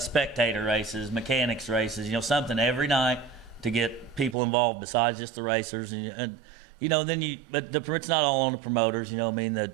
spectator races, mechanics races, something every night to get people involved besides just the racers. But it's not all on the promoters, that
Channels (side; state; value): left; drops out; at 4.4 s